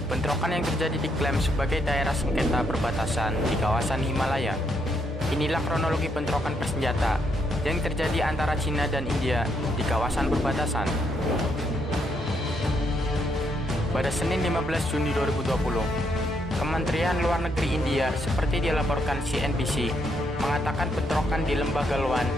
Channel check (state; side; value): normal; both; correlation 0.76